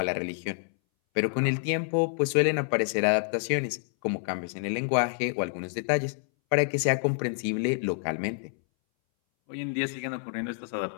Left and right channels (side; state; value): right; silent; 59 dB below the other